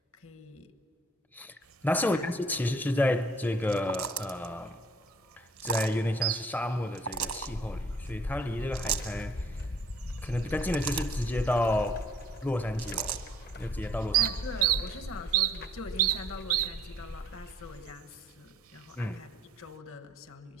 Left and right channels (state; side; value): normal; both; correlation 0.58